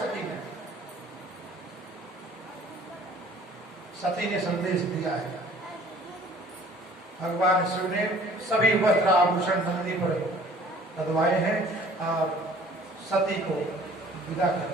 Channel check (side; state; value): both; normal; correlation 0.52